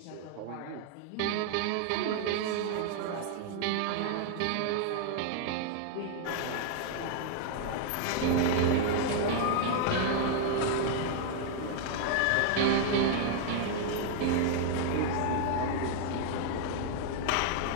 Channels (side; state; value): both; different; correlation 0.00